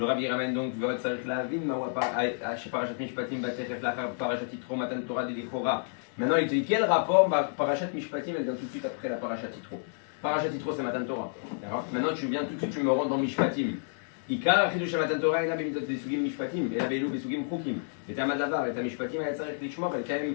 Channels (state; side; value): silent; right; digital silence